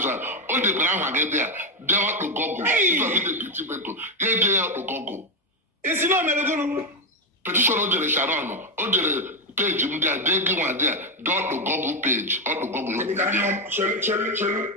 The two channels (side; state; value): both; normal; correlation 0.08